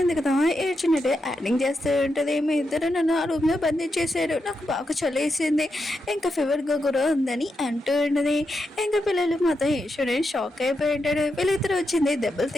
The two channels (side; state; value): both; normal; correlation 0.85